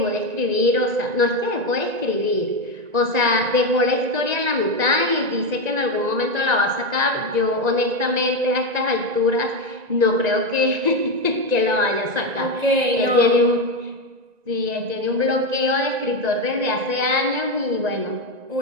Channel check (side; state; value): left; late; 1.9 ms